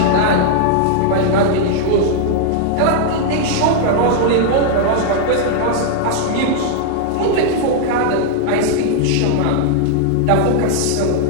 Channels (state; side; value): different; both; correlation -0.01